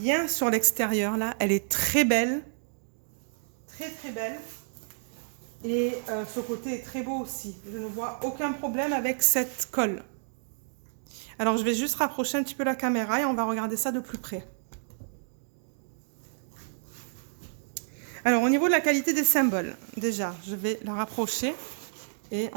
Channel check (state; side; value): silent; left; digital silence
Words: sur l'extérieur là. Elle est très belle. Très très belle. Et ce côté est très beau aussi. Je ne vois aucun problème avec cette colle. Alors je vais juste rapprocher un petit peu la caméra et on va regarder ça de plus près. Alors, au niveau de la qualité des symboles, déjà, je vais la rapprocher et